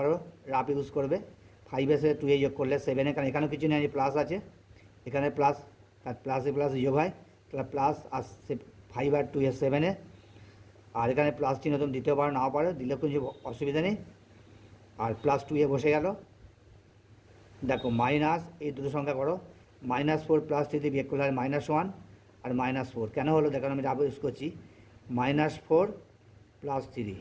রাফ ইউজ করবে। 5 এর সাথে 2 যোগ করলে 7, কারণ এখানেও কিছু নেই, প্লাস আছে, এখানে প্লাস, আর প্লাসে প্লাস যোগ হয়, তাহলে প্লাস আসছে 5 আর 2 7, আর এখানে প্লাস চিহ্ন তুমি দিতেও পারো নাও পারো, দিলে কিছু অসুবিধা নেই। আর +2 বসে গেল। দেখো মাইনাস, এই দুটো সংখ্যা করো, -4 + 3 বিয়োগ করলে হয় -1 আর -4, কেন হলো দেখো আমি রাফ ইউজ করছি। -4 + 3,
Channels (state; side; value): identical; both; correlation 1.00